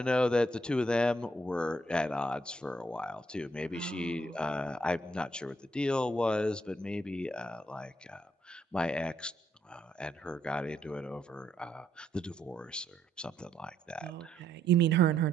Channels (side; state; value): both; normal; correlation 0.74